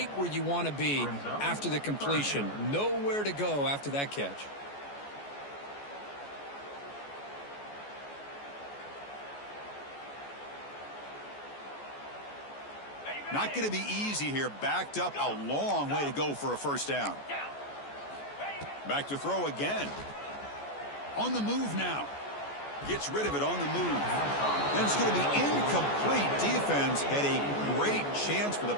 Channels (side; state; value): right; late; 14 ms